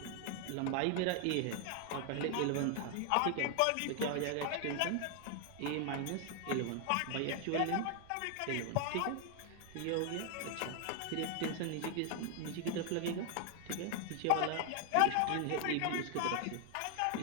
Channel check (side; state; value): both; different; correlation 0.00